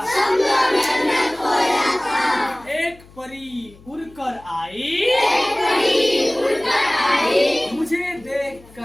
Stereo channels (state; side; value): noise; left; hum, 24 dB below the sound